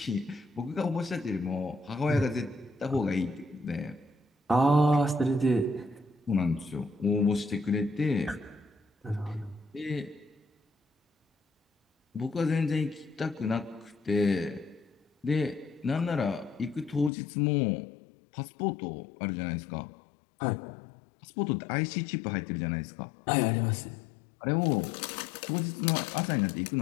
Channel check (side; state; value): right; drops out; at 17.1 s